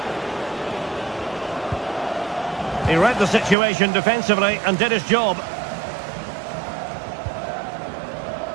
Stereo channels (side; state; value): left; drops out; at 3.6 s